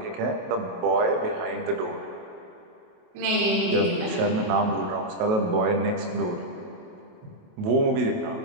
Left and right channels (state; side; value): late; left; 28 ms